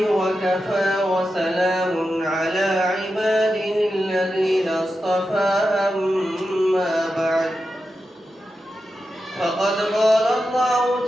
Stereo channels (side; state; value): both; normal; correlation 0.90